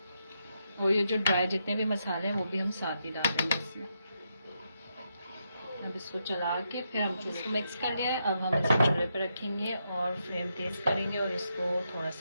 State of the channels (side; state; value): both; inverted; correlation -0.82